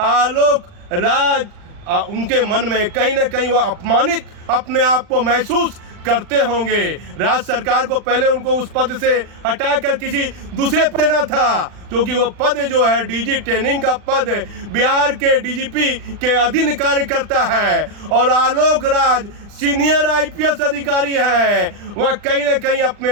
आलोक राज उनके मन में कहीं ना कहीं वह अपमानित अपने आप को महसूस करते होंगे। राज्य सरकार को पहले उनको उस पद से हटाकर किसी दूसरे पद देना था, क्योंकि वह पद जो है डीजी ट्रेनिंग का पद बिहार के डीजीपी के अधीन कार्य करता है। और आलोक राज सीनियर आईपीएस अधिकारी हैं, वह कहीं ना कहीं अपने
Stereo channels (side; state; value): left; late; 40 ms